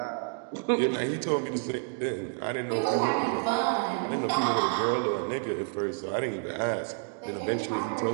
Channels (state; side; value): quieter; left; 39.7 dB